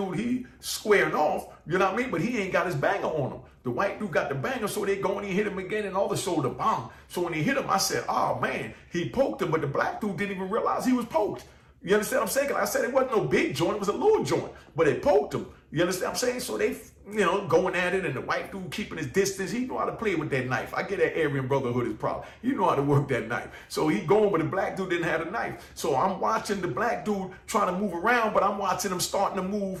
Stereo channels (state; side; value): identical; both; correlation 1.00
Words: he squaring off, you know what I mean? But he ain't got his banger on him. The white dude got the banger, so they go and he hit him again and all the shoulder, bang. So when he hit him, I said, oh man, he poked him, but the black dude didn't even realize he was poked. You understand what I'm saying? Like I said, it wasn't no big joint, it was a little joint, but it poked him. You understand what I'm saying? So they, you know, going at it, and the white dude keeping his distance. He know how to play with that knife. I get that Aryan Brotherhood is problem. You know how to work that knife. So he going, but the black dude didn't have a knife. So I'm watching the black dude trying to move around, but I'm watching him starting to